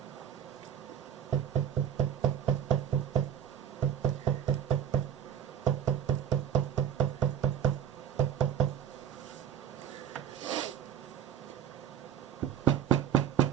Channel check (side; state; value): left; quieter; 9.2 dB